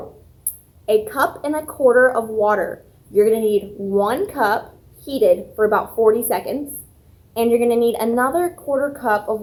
a cup and a quarter of water. You're going to need 1 cup heated for about 40 seconds, and you're going to need another quarter cup of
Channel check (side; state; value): both; identical; correlation 1.00